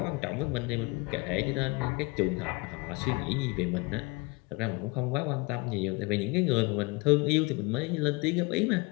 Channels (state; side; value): quieter; right; 26.6 dB